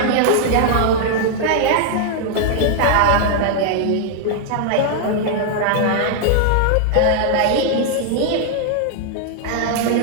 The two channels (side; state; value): both; different; correlation 0.00